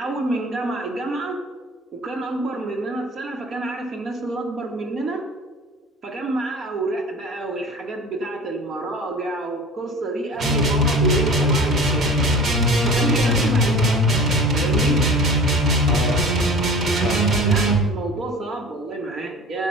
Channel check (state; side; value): normal; both; correlation 0.40